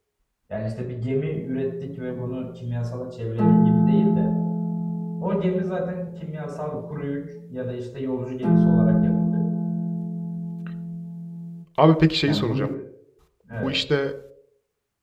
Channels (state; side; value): identical; both; correlation 1.00